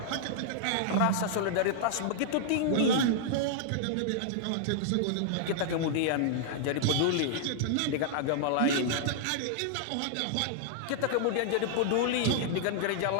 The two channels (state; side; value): different; both; correlation -0.01